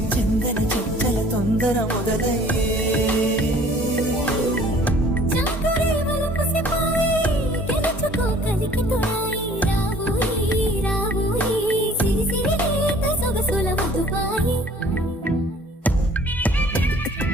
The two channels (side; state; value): both; normal; correlation 0.53